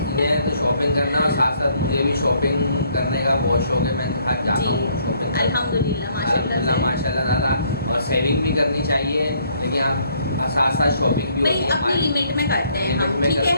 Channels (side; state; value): both; inverted; correlation -0.66